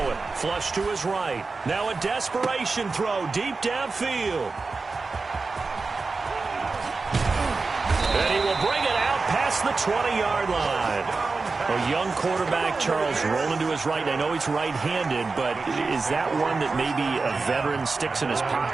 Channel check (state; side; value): quieter; left; 4.1 dB